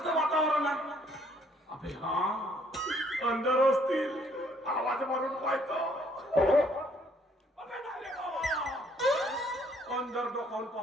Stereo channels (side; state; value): both; normal; correlation 0.65